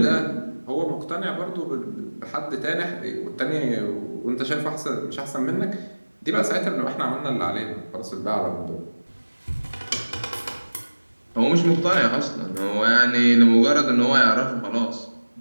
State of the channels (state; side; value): inverted; both; correlation -1.00